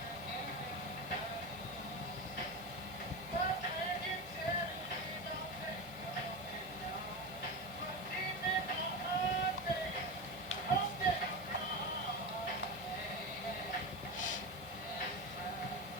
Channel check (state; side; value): normal; both; correlation 0.20